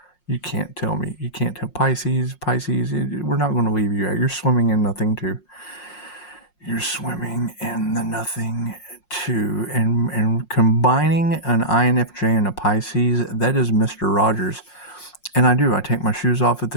You can't tell me. You can't tell Pisces, we're not going to leave you out. You're swimming in nothing too. You're swimming in the nothing too. And combining an INFJ and a Pisces, that is Mr. Rogers. And I take my shoes off at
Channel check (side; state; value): right; late; 5.5 ms